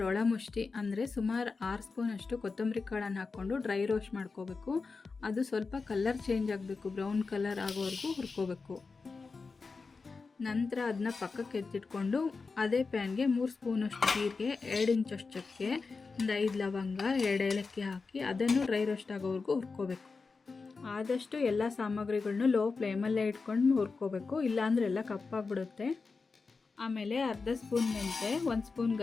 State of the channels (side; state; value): right; quieter; 4.4 dB